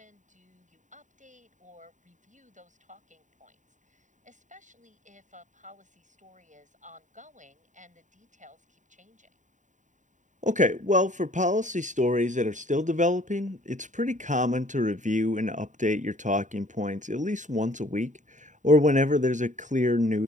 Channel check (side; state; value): left; late; 0.36 ms